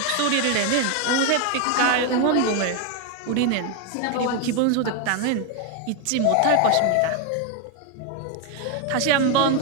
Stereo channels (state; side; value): different; both; correlation 0.01